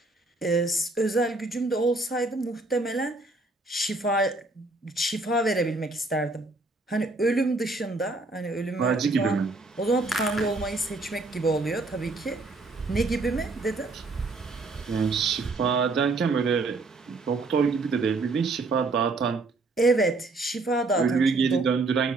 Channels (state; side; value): quieter; left; 3.3 dB